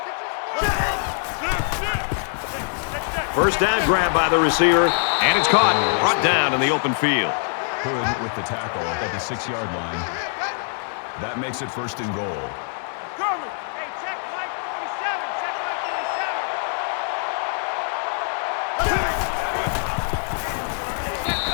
First down grab by the receiver. And it's caught. Brought down in the open field. Hood with the tackle at the 6-yard line. That makes it 1st and goal.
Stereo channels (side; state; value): right; silent; 63 dB below the other